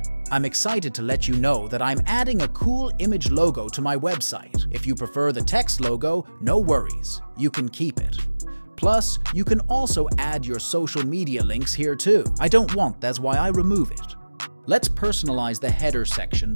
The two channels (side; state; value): both; inverted; correlation -1.00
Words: I'm excited to let you know that I'm adding a cool image logo to my website. If you prefer the text logo, no worries, you can keep it. Plus, you can also add your social media links here too. I don't want, that's why I remove it. Let's personalize the header section